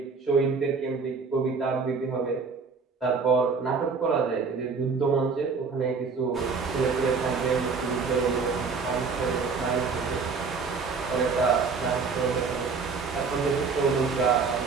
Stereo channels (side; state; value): left; quieter; 4.9 dB